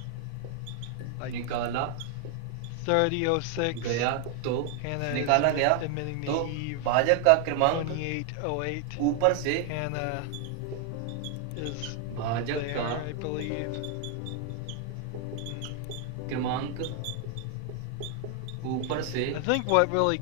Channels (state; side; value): different; both; correlation 0.00